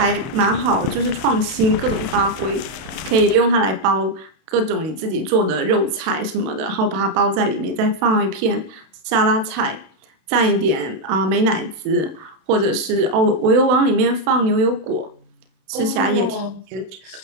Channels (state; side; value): late; left; 32 ms